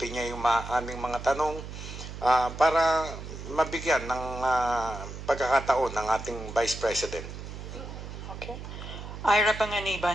niya yung aming mga tanong para mabigyan ng pagkakataon ng ating Vice President. Okay. Ira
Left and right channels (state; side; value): noise; right; hum, 10 dB below the sound